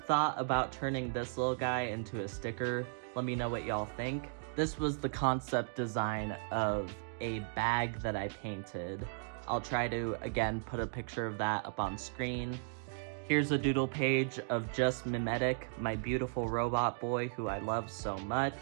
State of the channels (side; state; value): left; silent; digital silence